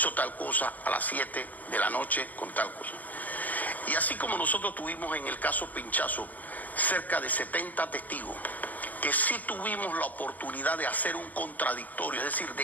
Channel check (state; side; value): late; right; 0.081 ms